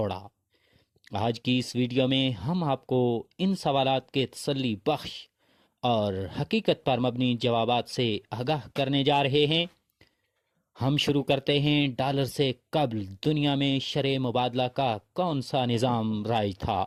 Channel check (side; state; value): both; identical; correlation 1.00